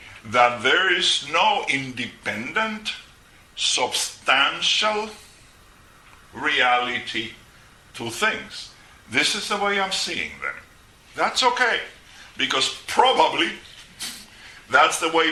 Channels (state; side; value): identical; both; correlation 1.00